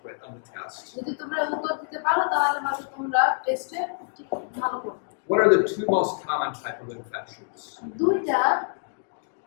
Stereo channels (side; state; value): right; silent; digital silence